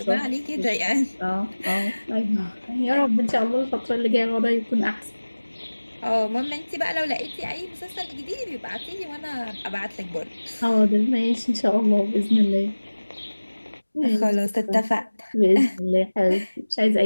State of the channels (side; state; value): both; inverted; correlation -1.00